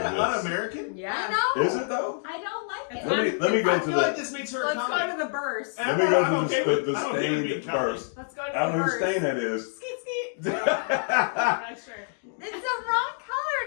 kind of this. un-American. Yeah. I know. Is it though? I don't like It's it. Let me go I to feel like the. this makes her a Let's go comic. to the burst. Let me go I'm to okay the with- I'm okay with being stained comic. first. Let's go to I don't the know whose burst. stain that is. Skeet skeet. I'm not sure. It's the wrong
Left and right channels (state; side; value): silent; right; digital silence